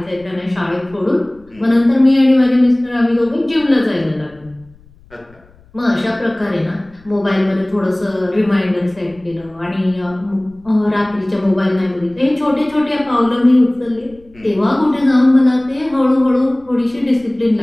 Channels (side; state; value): left; noise; rumble, 27 dB below the sound